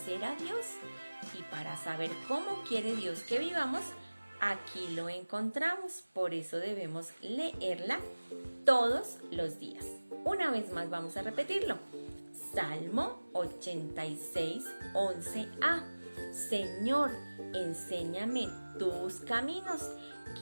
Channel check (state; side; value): inverted; both; correlation -1.00